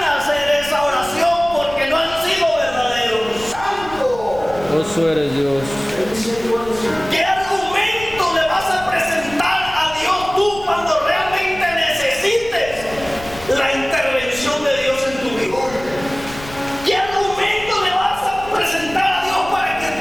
hacer esa oración porque no han sido verdaderos. ¡Santo! Vos eres Dios. ¿Qué argumento le vas a presentar a Dios tú cuando realmente necesites la intervención de Dios en tu vida? ¿Qué argumento le vas a presentar a Dios para que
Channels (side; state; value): left; noise; rumble, 16 dB below the sound